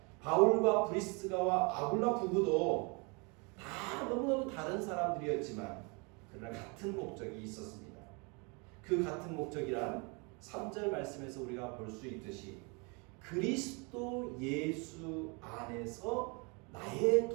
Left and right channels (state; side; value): quieter; left; 31.5 dB